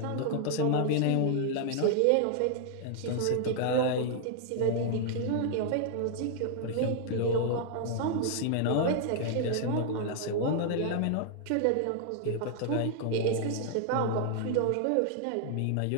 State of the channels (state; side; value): different; both; correlation 0.00